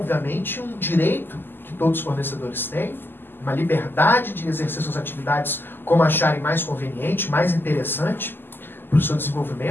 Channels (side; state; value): right; late; 0.096 ms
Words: um direito que todos os fornecedores têm, uma liberdade de exercer suas atividades como acharem mais conveniente, mais interessante para o seu